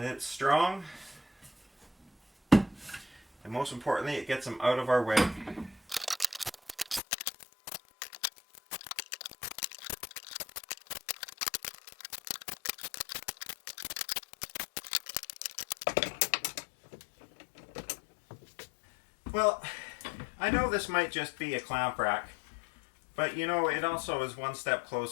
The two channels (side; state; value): right; drops out; at 7.0 s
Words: it's strong. And most importantly, it gets them out of our way. Well, I know this might just be a clamp rack, but you know, it also is one step